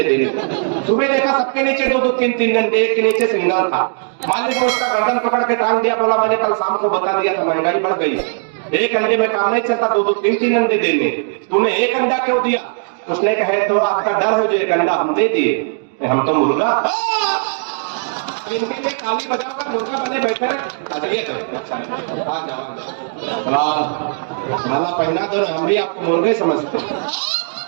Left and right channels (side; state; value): left; silent; digital silence